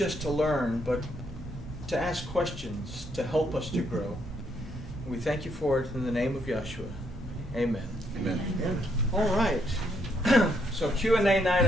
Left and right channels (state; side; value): normal; both; correlation 0.74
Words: to learn, but to ask questions, to help us to grow. We thank you for it in the name of Yeshua. Amen. Amen. All right. So Q&A night,